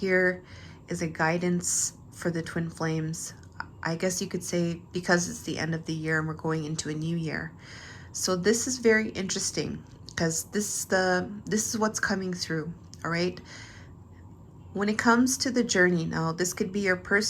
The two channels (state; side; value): identical; both; correlation 1.00